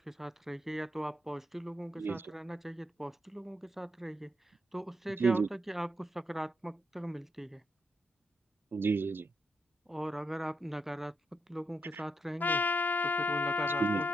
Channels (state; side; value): normal; both; correlation 0.80